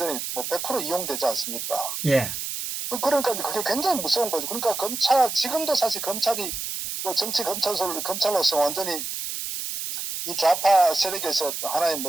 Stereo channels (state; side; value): noise; right; hiss, 5 dB below the sound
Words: 뭐 100% 이용되지 않습니까? 예, 그러니까 그게 굉장히 무서운 거죠. 그러니까 지금도 사실 검찰이 뭐 정치 검찰로서 완전히 이 좌파 세력에서 하나의